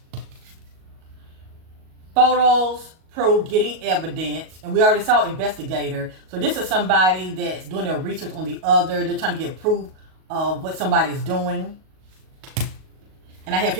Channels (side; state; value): left; late; 38 ms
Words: Photos prove getting evidence. And we already saw investigator. So this is somebody that's doing their research on the other. They're trying to get proof of what somebody's doing. And I have